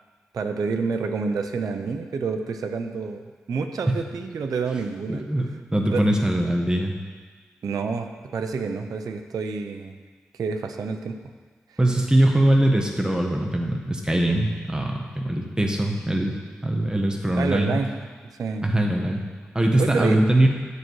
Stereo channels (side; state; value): both; normal; correlation 0.92